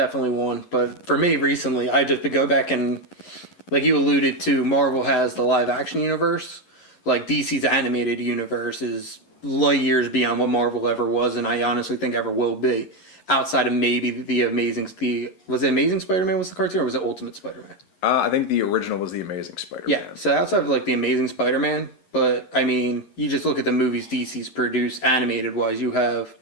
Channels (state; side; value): late; right; 11 ms